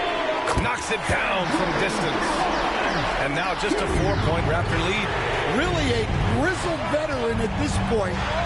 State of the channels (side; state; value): both; identical; correlation 1.00